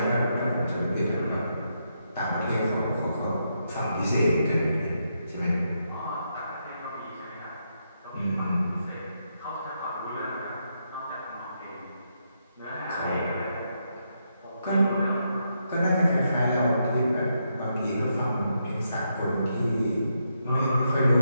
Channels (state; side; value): inverted; both; correlation -0.81